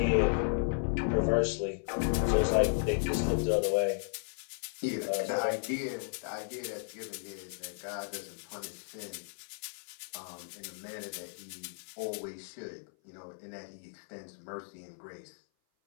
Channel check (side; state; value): right; silent; 55 dB below the other